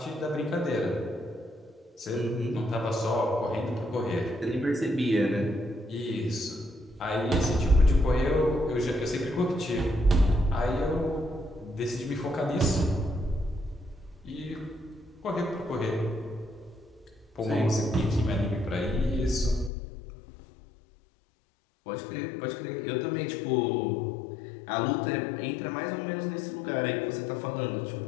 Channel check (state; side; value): drops out; right; at 19.7 s